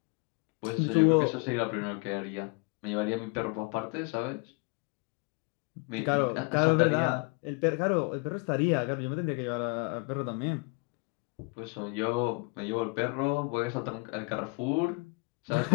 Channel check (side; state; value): right; quieter; 30.8 dB